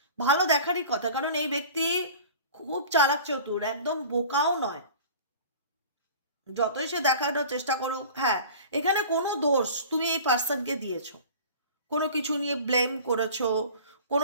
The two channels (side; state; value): both; inverted; correlation -0.42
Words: ভালো দেখারই কথা, কারণ এই ব্যক্তি খুব চালাক চতুর, একদম বোকাও নয়। যতই সে দেখানোর চেষ্টা করুক, হ্যাঁ এখানে কোনো দোষ তুমি এই পার্সনকে দিয়েছো, কোনো কিছু নিয়ে ব্লেম করেছো,